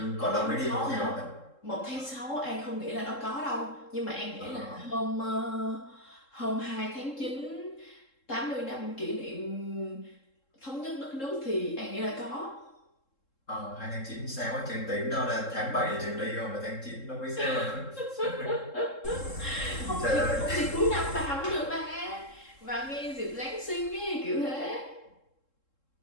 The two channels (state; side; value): late; right; 3.7 ms